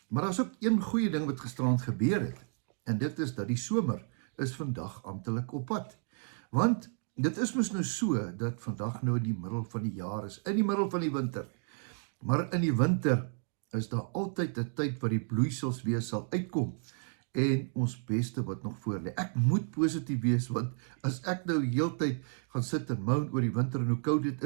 Maar daar's ook een goeie ding wat gisterand gebeur het. En dit is dat die somer is vandag amptelik op pad. Want dit is mos nou so dat vandag nou in die middel van die jaar is, in die middel van die winter. Maar in die winter is daar altyd 'n tyd wat die bloeisels weer sal uitkom. En ons beste wat nog voor lê. Ek moet positief wees, want as ek nou heeltyd gaan sit en moan oor die winter en hoe koud dit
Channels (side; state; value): left; silent; 56 dB below the other